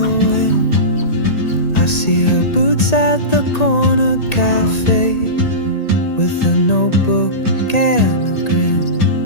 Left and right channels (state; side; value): late; right; 1.9 ms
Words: wind. I see her boots at the corner cafe, with a notebook and a grin.